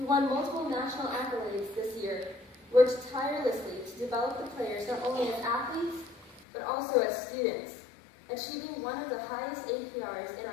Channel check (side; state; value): right; drops out; at 6.5 s